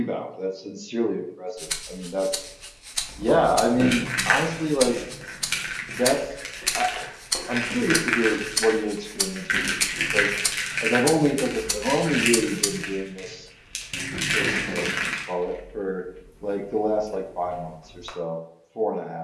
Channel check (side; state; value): both; identical; correlation 1.00